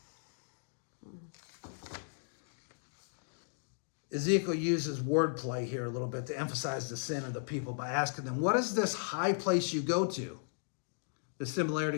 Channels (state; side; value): silent; right; digital silence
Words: Ezekiel uses wordplay here a little bit to emphasize the sin of the people by asking them, what is this high place you go to? The